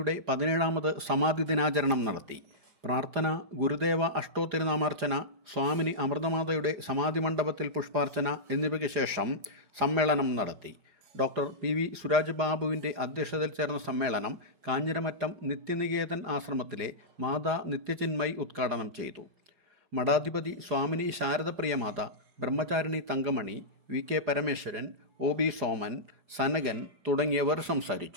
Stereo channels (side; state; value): left; late; 4.9 ms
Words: 17ാമത് സമാധി ദിനാചരണം നടത്തി. പ്രാർത്ഥന, ഗുരുദേവ അഷ്ടോത്തിരുനാമാർച്ചന, സ്വാമിനി അമൃതമാതയുടെ സമാധി മണ്ഡപത്തിൽ പുഷ്പാർച്ചന എന്നിവയ്ക്ക് ശേഷം സമ്മേളനം നടത്തി. ഡോക്ടർ പി വി സുരാജ് ബാബുവിൻ്റെ അധ്യക്ഷതയിൽ ചേർന്ന സമ്മേളനം കാഞ്ഞിരമറ്റം നിത്യനികേതൻ ആശ്രമത്തിലെ മാതാ നിത്യചിന്മയി ഉദ്ഘാടനം ചെയ്തു. മഠാധിപതി Swamini Saradapriyamata, Brahmacharini Thankamani, V K Parameswaran, O B Soman, Sanakan തുടങ്ങിയവർ